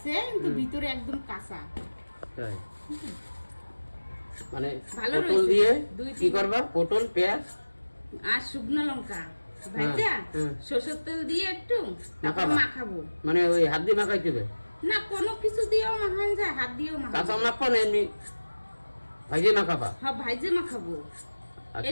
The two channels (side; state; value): both; inverted; correlation -1.00